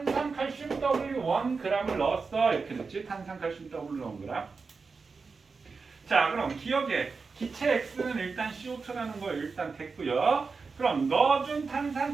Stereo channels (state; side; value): quieter; left; 4.7 dB